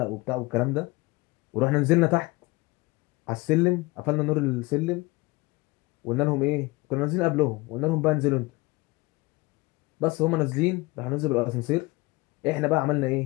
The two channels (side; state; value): right; quieter; 22.7 dB